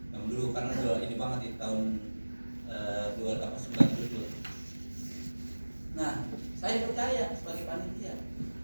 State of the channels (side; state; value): both; inverted; correlation -1.00